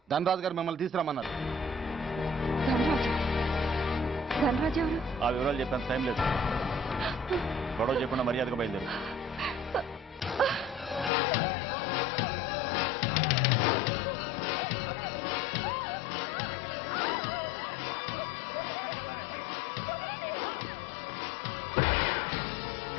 ధనరాజు గారు మిమ్మల్ని తీసుకురామన్నారు. ధనరాజు ఎవరు? ఆ వివరాలు చెప్పేంత టైం లేదు. గొడవ చెప్పకుండా మర్యాదగా బయలుదేరు.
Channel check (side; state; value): right; drops out; at 11.1 s